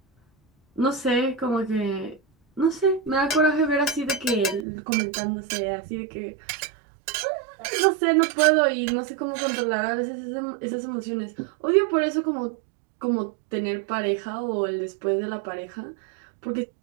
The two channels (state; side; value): drops out; left; at 4.7 s